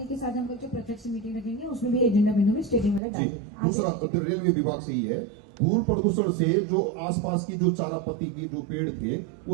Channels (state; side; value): drops out; left; at 3.0 s